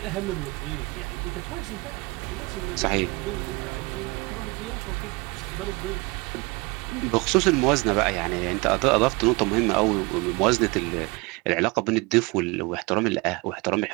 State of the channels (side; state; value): left; quieter; 26.1 dB